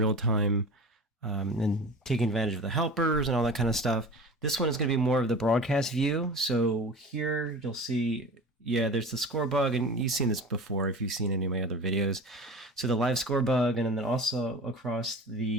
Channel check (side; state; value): both; normal; correlation 0.35